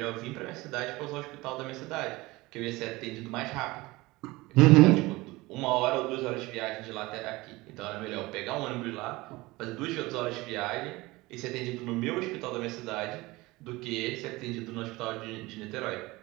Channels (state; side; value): quieter; left; 21.1 dB